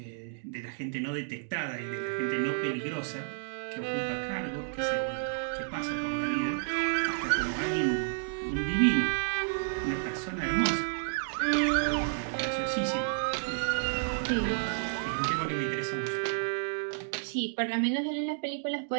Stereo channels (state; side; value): silent; left; digital silence